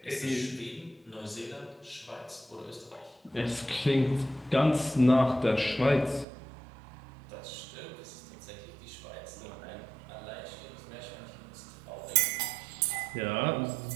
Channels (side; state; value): left; drops out; at 6.2 s